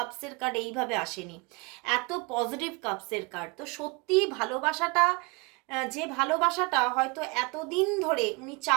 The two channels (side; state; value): left; quieter; 27.6 dB